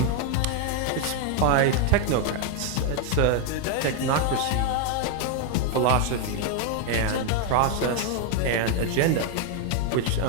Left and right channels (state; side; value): different; both; correlation 0.01